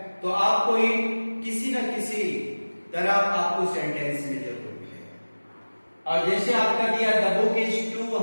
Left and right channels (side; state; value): both; inverted; correlation -1.00